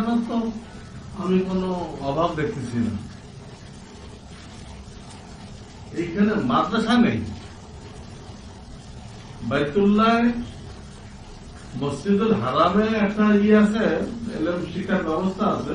তো আমি কোনো অভাব দেখতেছি না, এইখানে মাদ্রাসা নেই, বাইতুল্লাহ মসজিদুল হারামে একটা আছে, এলএম শিক্ষার ব্যবস্থা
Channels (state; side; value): identical; both; correlation 1.00